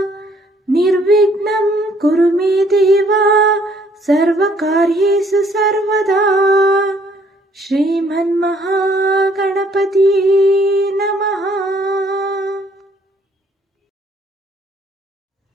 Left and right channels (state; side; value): normal; both; correlation 0.63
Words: ನಿರ್ವಿಘ್ನಂ ಕುರು ಮೇ ದೇವ ಸರ್ವಕಾರ್ಯೇಷು ಸರ್ವದಾ ಶ್ರೀಮನ್ಮಹಾಗಣಪತಿ ನಮಃ.